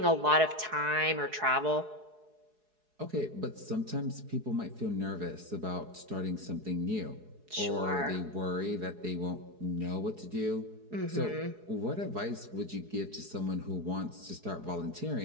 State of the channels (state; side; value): late; left; 4.7 ms